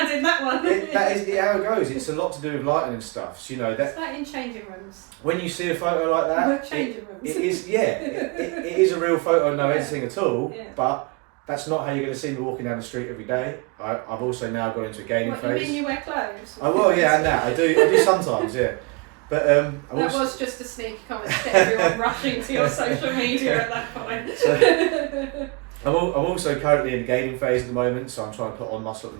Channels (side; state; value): left; quieter; 29.1 dB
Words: in that one. That is how it goes. It's a lot to do with lighting and stuff. So, that it's like in changing rooms. When you see a photo like that, changing rooms. It is it is a real photo, no editing at all. But that's not how you're going to see me walking down the street every day. I've also now got into a gaining phase. You mean you wear clothes? I will, and that I do sometimes, But that was just a sneaky comment to get everyone rushing to your social media at that point. So, I'm also currently in the gaining phase at the moment, so I'm trying to put on muscle at the